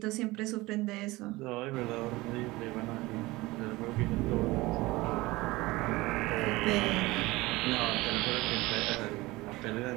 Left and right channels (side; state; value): left; quieter; 20.5 dB